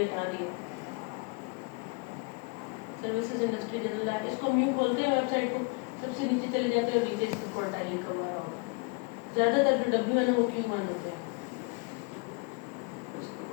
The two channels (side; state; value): right; quieter; 29.3 dB